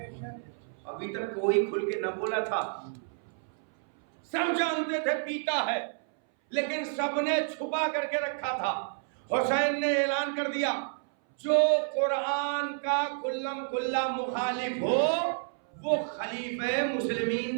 ابھی تک کوئی کھل کے نہ بولا تھا, سب جانتے تھے پیتا ہے, لیکن سب نے چھپا کر کے رکھا تھا. حسین نے اعلان کر دیا جو قرآن کا کلم کلا مخالف ہو وہ خلیفہ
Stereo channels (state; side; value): silent; left; 58 dB below the other